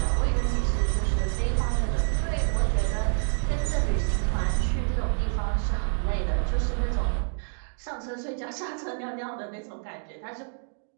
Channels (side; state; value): left; silent; 60 dB below the other